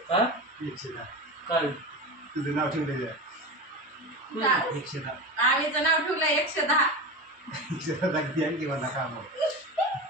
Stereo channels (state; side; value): normal; both; correlation 0.24